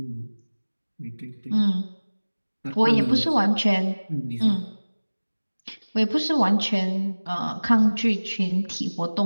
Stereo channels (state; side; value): inverted; both; correlation -1.00